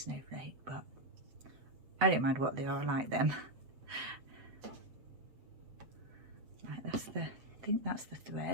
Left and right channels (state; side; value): late; left; 8.0 ms